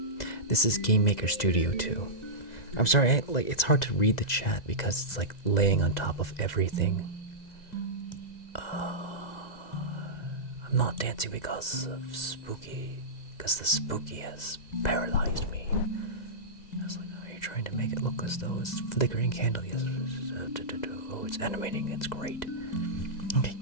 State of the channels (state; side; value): late; right; 2.0 ms